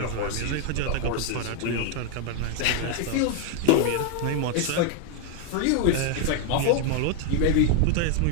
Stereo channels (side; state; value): both; different; correlation 0.00